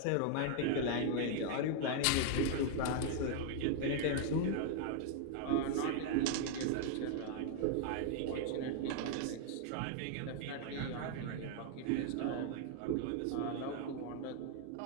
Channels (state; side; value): different; both; correlation 0.00